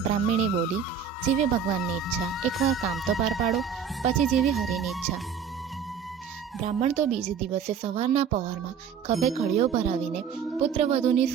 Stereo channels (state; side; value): quieter; left; 7.1 dB